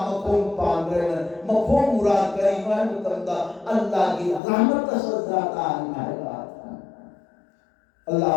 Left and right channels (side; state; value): right; drops out; at 4.4 s